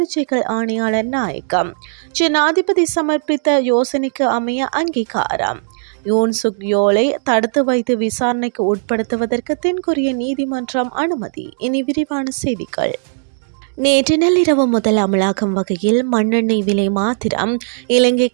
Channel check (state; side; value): silent; left; digital silence